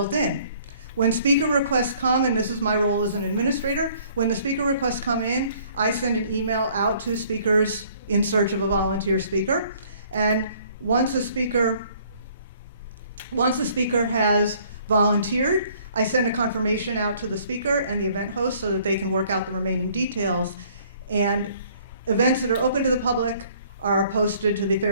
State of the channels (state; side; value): inverted; both; correlation -0.59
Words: in. When speaker requests come, and this is my role as an administrator, when the speaker requests come in, I send an email out to speakers in search of a volunteer speaker. And once a speaker has volunteered, I send a confirmation out to the speaker and the event host so that they can work out the remaining details. And events that are open to the public are posted to the